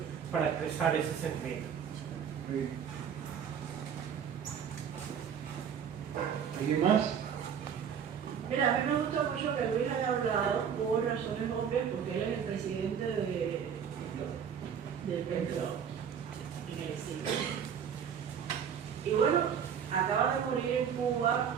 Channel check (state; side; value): quieter; left; 7.8 dB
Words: para expresar ese sentimiento. ¿Alguien más? Mira, a mí me gusta mucho que Luis haya hablado por razones obvias, porque él es el presidente del Petro en el siglo. Y bueno, acaba de morir en Cuba